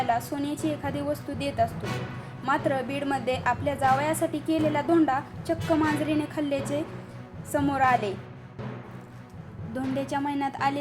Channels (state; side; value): identical; both; correlation 1.00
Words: सोन्याची एखादी वस्तू देत असतो। मात्र बीडमध्ये आपल्या जावयासाठी केलेला धोंडा चक्क मांजरीने खाल्ल्याचे समोर आले। धोंड्याच्या महिन्यात